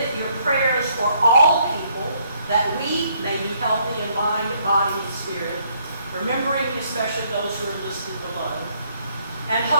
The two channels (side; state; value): both; inverted; correlation -0.68